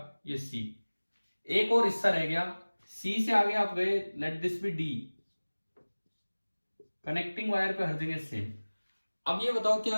ये सी। एक और हिस्सा रह गया, सी से आगे आप गए, let this B D. Connecting wire पे हर जगह सेम। अब ये बताओ,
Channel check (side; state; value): both; inverted; correlation -1.00